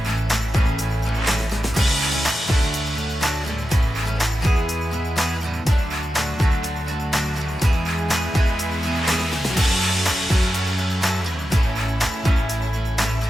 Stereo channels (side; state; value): both; normal; correlation 0.90